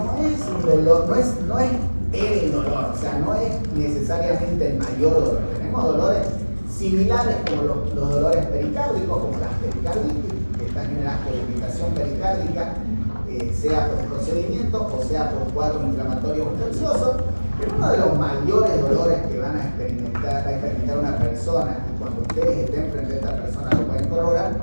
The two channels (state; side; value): inverted; both; correlation -1.00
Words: es un dolor, no es el dolor, o sea, no es necesariamente el mayor dolor. Tenemos dolores similares como los dolores pericárdicos, como las pericarditis, que están generadas por irritación pericárdica, sea por procedimiento o sea por cuadros inflamatorios infecciosos, pero uno de los mayores dolores que va a experimentar una persona, y cuando ustedes estén frente a esta persona lo pueden